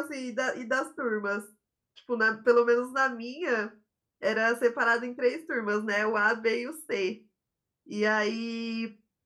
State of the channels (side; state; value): both; identical; correlation 1.00